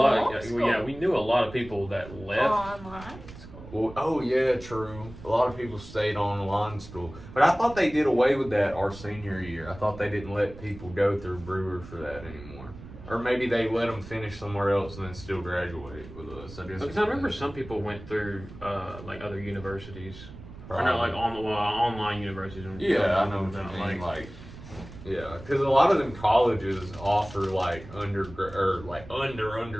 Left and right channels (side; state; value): right; noise; rumble, 15 dB below the sound